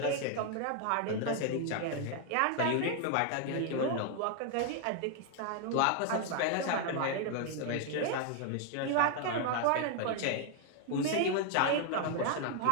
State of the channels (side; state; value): both; different; correlation 0.00